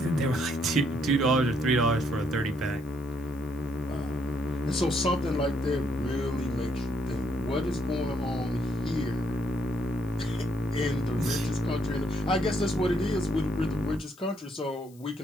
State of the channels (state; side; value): noise; left; hiss, 27 dB below the sound